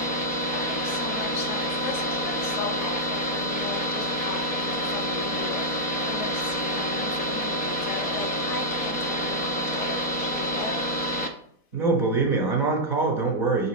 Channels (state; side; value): late; right; 4.1 ms